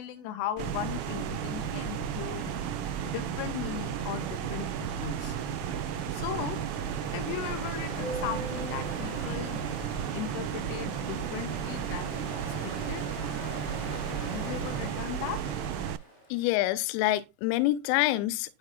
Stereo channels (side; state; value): right; late; 27 ms